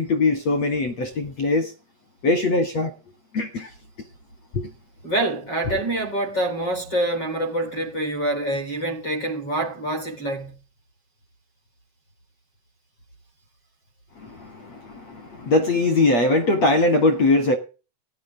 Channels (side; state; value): right; late; 7.4 ms